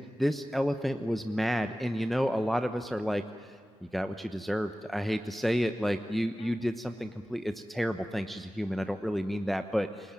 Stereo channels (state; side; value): normal; both; correlation 0.96